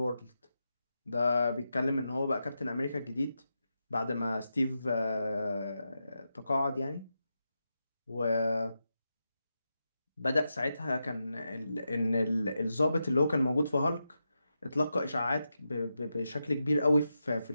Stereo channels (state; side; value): inverted; both; correlation -0.88